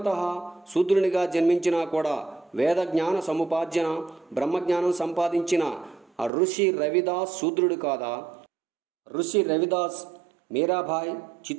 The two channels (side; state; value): left; drops out; at 6.3 s